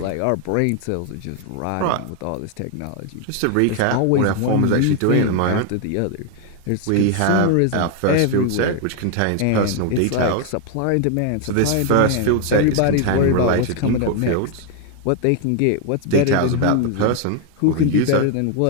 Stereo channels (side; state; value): both; different; correlation 0.01